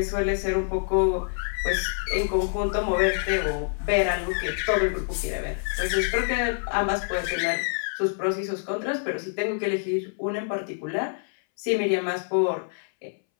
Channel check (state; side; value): silent; right; 61 dB below the other